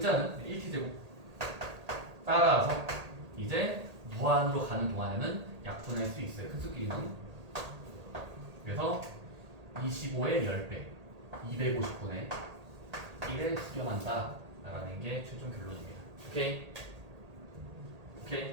1t제곱. 따라서 이제 무한으로 가는 동안에는 약분할 수 있어요. 큰 수끼리는. 그래서 25의 10배 250분의 1에 수렴한다 라는 게 최종 결론입니다. 오케이?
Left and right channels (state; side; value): late; left; 1.8 ms